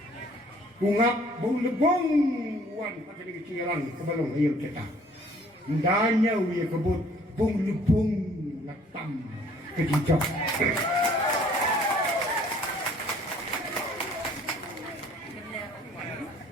Ungap bung lepung. Uan akan kialan kebalong ayam cetak. Danya uya kebut bung lepung latam kejijak.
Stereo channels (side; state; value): both; normal; correlation 0.57